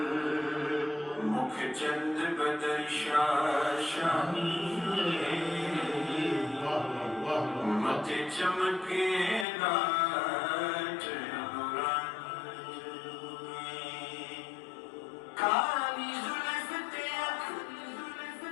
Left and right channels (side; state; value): right; drops out; at 9.5 s